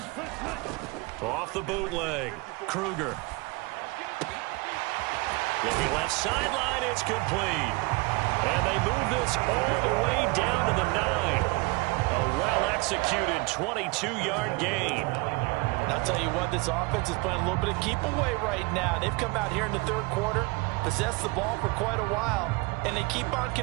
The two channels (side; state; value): left; quieter; 26.1 dB